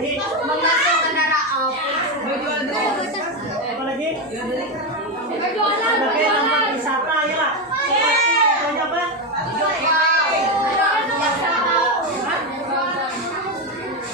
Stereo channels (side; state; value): both; normal; correlation 0.11